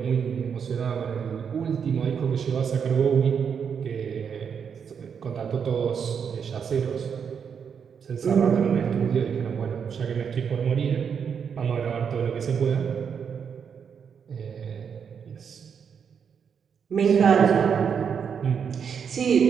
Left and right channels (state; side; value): quieter; left; 7.0 dB